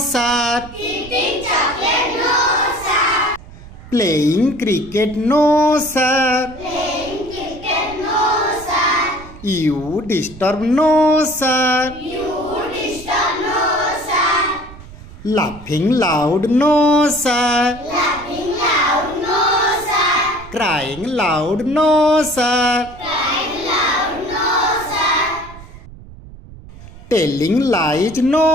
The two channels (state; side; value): noise; right; rumble, 17 dB below the sound